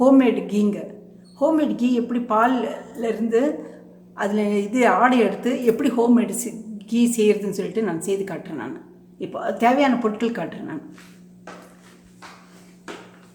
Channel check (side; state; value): both; identical; correlation 1.00